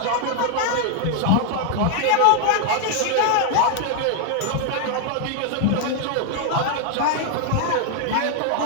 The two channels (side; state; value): both; different; correlation 0.00